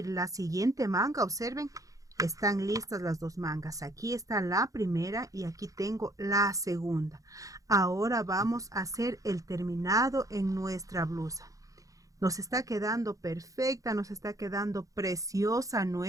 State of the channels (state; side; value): late; left; 0.16 ms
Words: la siguiente manga, observen, están listas las 2 mangas. Aquí está la primera y aquí tengo la segunda. Ahora vamos a hacer el terminado en nuestra blusa. Nos está quedando perfecta, nos está quedando preciosa